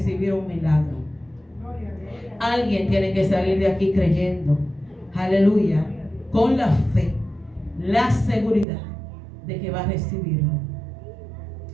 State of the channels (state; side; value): drops out; left; at 8.7 s